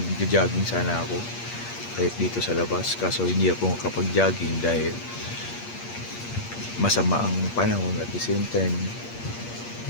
sana ako kahit dito sa labas, kaso hindi ako makapag-jogging dahil masama ang panahon. At the same time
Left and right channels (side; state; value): right; late; 8.5 ms